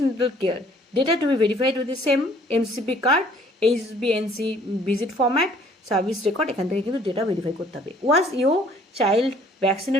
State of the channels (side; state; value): both; normal; correlation 0.58